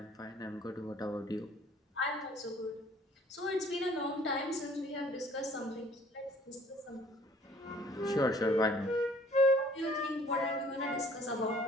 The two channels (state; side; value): normal; both; correlation 0.55